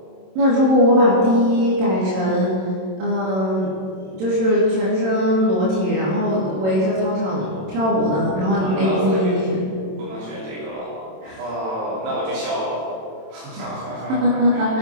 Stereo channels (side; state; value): left; late; 27 ms